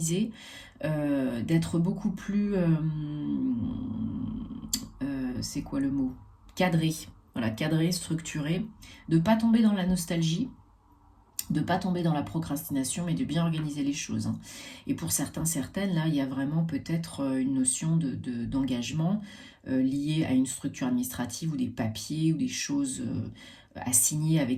d'être beaucoup plus... c'est quoi le mot? Cadré. Voilà, cadré, structuré, de ne pas tomber dans la nostalgie, de ne pas tomber dans la procrastination, mais de bien organiser les choses, hein. Et pour certains, certaines, là, il y a vraiment peut-être une notion d'engagement liée à une structure administrative ou des papiers ou des choses à signer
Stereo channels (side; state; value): both; identical; correlation 1.00